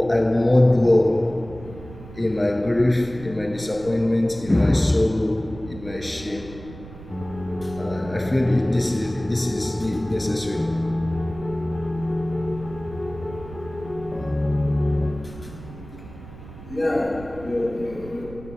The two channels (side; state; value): right; noise; rumble, 16 dB below the sound